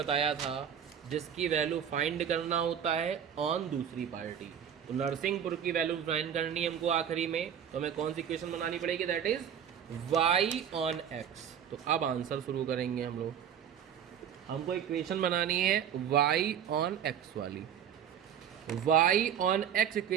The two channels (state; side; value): quieter; left; 8.8 dB